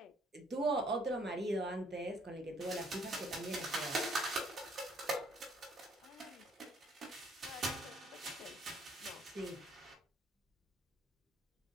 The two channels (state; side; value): normal; both; correlation 0.63